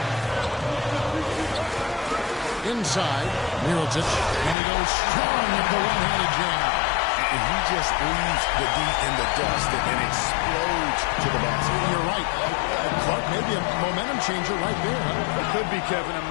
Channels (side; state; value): right; drops out; at 4.5 s